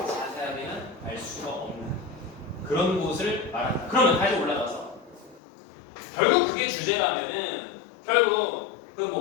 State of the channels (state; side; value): drops out; right; at 5.4 s